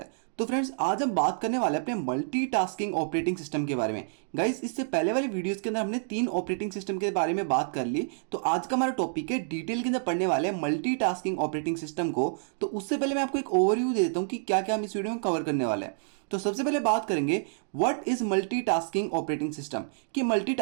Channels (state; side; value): silent; left; digital silence